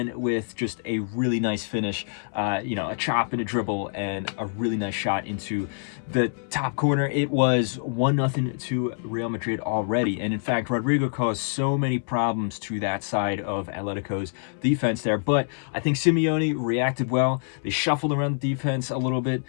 with just a really nice finish, a chop and a dribble and a really nice shot into the top corner. It was 1-0 to Real Madrid already. And in fact, Rodrigo caused so many problems to that side of Atletico's defense there, but I think Simeone reacted well. They shuffled around the defense a little bit.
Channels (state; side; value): silent; right; 61 dB below the other